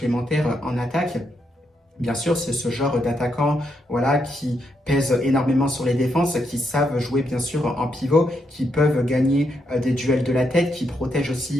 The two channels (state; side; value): normal; both; correlation 0.80